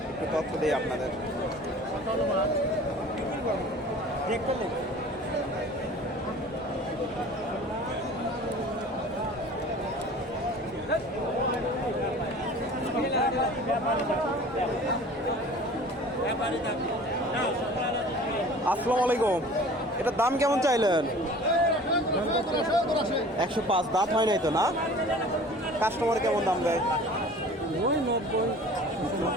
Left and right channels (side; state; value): both; normal; correlation 0.44